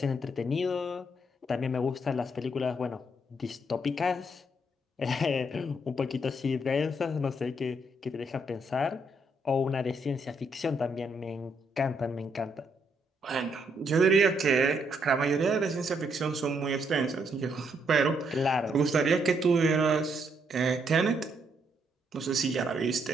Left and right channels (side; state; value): both; normal; correlation 0.74